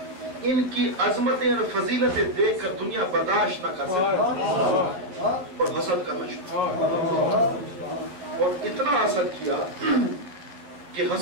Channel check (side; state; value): left; late; 11 ms